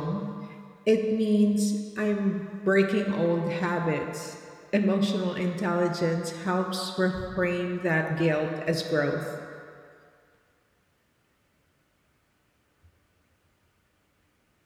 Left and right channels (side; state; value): both; identical; correlation 1.00